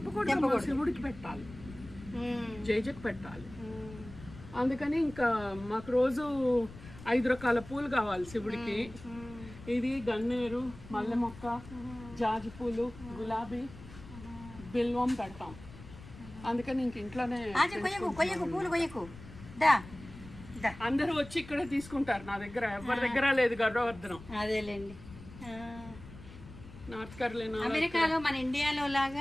శివుడికి పెట్టాలి, జైజకి పెట్టాలి. అందుకని ఇంకా మాకు రోజు 5 రకాల పూలు కావాలి శివుడికి. ఇది గన్నేరు, మల్లె మొక్క, జాజి పూలు, గులాబీ, బిల్వం పెడతాం. అందుకని ఇంక ఇంట్లోనే అందరూ వచ్చి ఇక్కడే తీసుకుంటారు. నా దగ్గర ఎవరి దగ్గర లేదు గరుడవర్ధనం. అదేలేండి. నార్త్ కరోలినా, అమెరికాలో మన ఇండియాలో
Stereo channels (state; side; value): noise; left; rumble, 16 dB below the sound